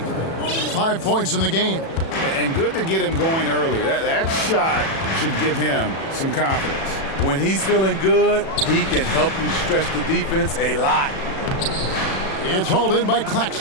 5 points in the game. And good to get him going early. That shot should give him some confidence. When he's feeling good, he can help you stretch the defense a lot. It's hauled in by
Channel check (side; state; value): right; late; 37 ms